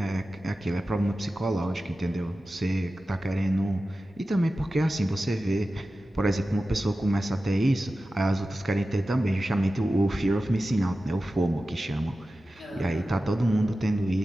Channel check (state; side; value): normal; both; correlation 0.94